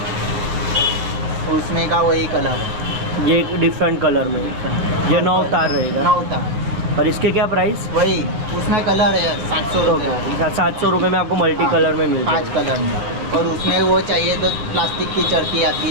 उसमें का वही कलर है। ये डिफरेंट कलर में, ये 9 तार रहेगा। 9 तार। और इसके क्या प्राइस? वही उसमें कलर है 700 रुपये। 700 रुपये में आपको मल्टी कलर में मिल 5 कलर में। और उसमें वो चाहिए तो प्लास्टिक की चरखी आती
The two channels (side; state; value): left; late; 9.2 ms